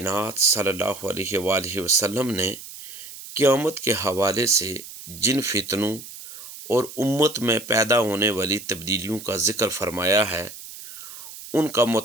صلی اللہ علیہ وآلہ وسلم نے قیامت کے حوالے سے جن فتنوں اور امت میں پیدا ہونے والی تبدیلیوں کا ذکر فرمایا ہے، ان کا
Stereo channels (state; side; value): noise; right; hiss, 14 dB below the sound